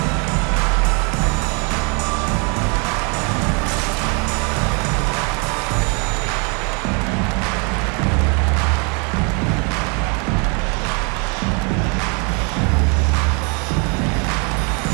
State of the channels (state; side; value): quieter; left; 34.9 dB